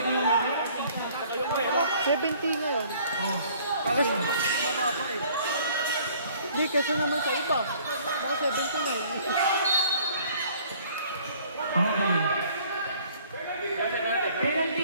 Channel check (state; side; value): inverted; both; correlation -0.56